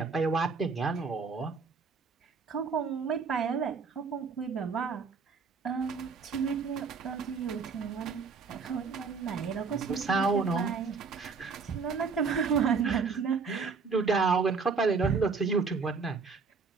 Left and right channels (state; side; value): quieter; left; 5.1 dB